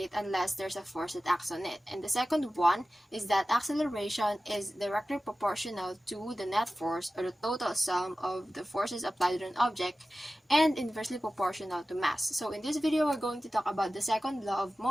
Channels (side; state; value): both; normal; correlation 0.95